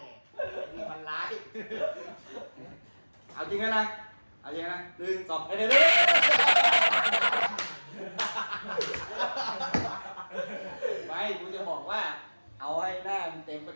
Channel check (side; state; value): both; inverted; correlation -1.00